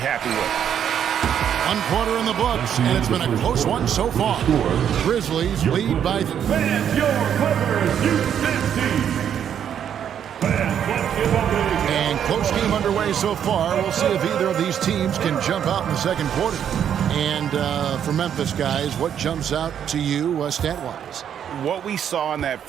with. 1 quarter in the books, and it's been a close one so far. Grizzlies lead by... Fans, your Clippers, Houston team. Fans, let's give a big... And close game underway so far. We'll see if either of these teams can jump out in the second quarter. And for Memphis, guys, what jumps out to you stat-wise? What we saw in that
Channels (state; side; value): quieter; left; 9.0 dB